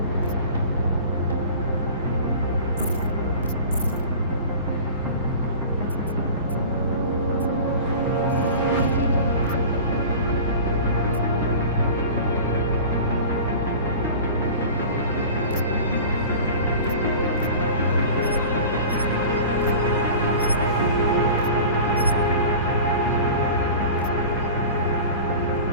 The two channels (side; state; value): both; inverted; correlation -0.38